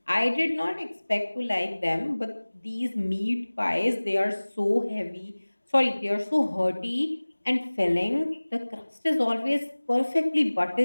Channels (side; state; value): both; inverted; correlation -1.00